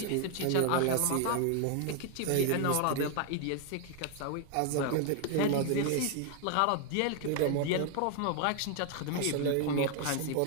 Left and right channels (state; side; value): different; both; correlation 0.00